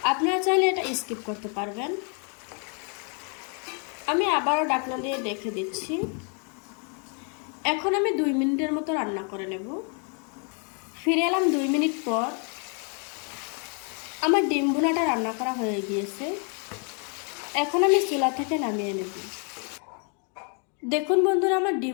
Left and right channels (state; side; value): quieter; right; 39.3 dB